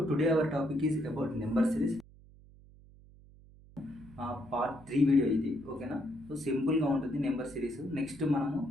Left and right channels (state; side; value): noise; right; hum, 23 dB below the sound